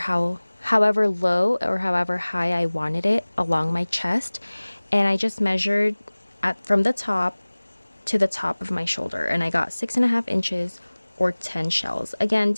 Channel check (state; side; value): inverted; both; correlation -1.00